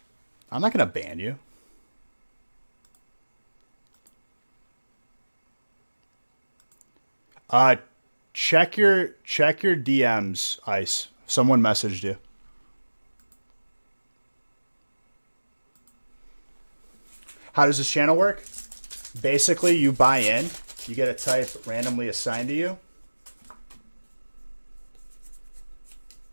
I'm not gonna ban you. Check your DMs, Ice. Someone messaged you. How does this channel work? Basically, you buy in, you get a type randomly assigned to you.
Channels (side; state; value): both; inverted; correlation -1.00